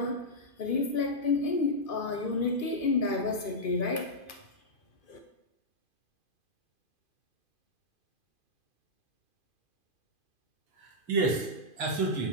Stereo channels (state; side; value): late; right; 2.5 ms